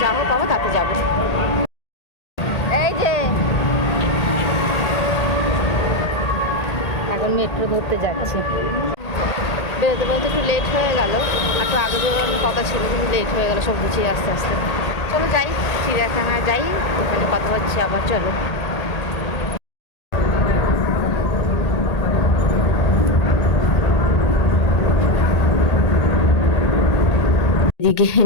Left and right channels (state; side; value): late; right; 1.8 ms